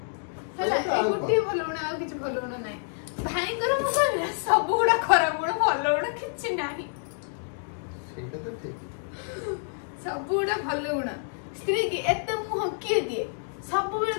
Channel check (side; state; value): right; silent; digital silence